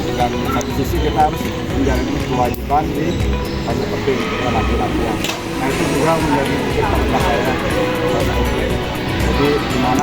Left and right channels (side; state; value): both; identical; correlation 1.00